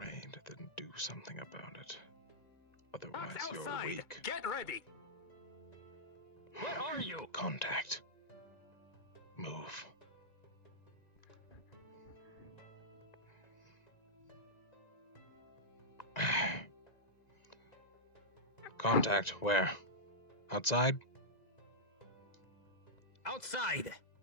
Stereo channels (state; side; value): late; right; 1.9 ms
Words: then do something about it. Otherwise, you're Outside. weak. Get ready. Where are you? Contact. Contact where? Outside? Outside!